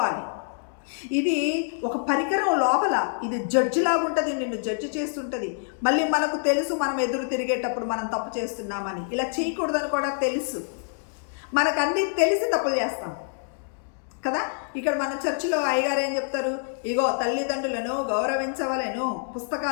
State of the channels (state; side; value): silent; right; digital silence